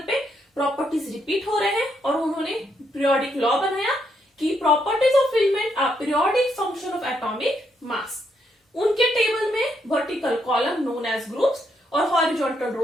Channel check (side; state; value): both; normal; correlation 0.77